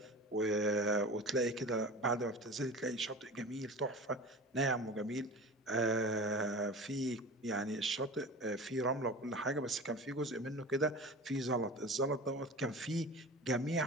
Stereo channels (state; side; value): normal; both; correlation 0.34